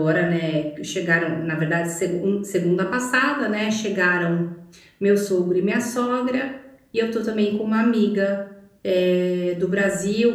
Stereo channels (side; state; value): both; identical; correlation 1.00